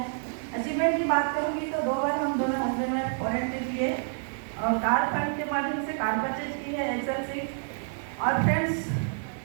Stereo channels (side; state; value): left; silent; 59 dB below the other